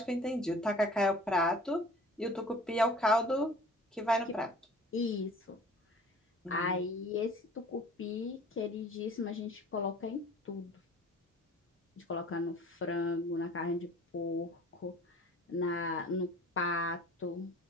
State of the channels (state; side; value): normal; both; correlation 0.47